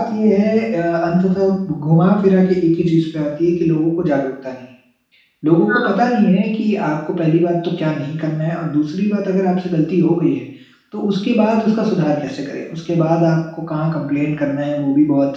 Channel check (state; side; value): identical; both; correlation 1.00